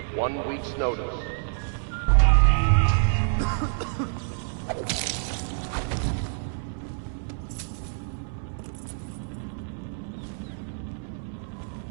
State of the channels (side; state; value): left; silent; 60 dB below the other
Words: 1 week's notice.